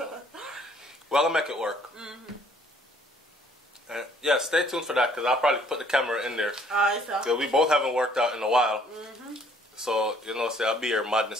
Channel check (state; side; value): normal; both; correlation 0.61